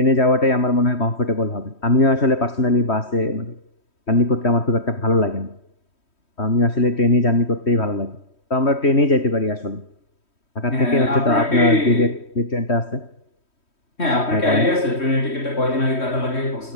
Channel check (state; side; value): late; right; 3.1 ms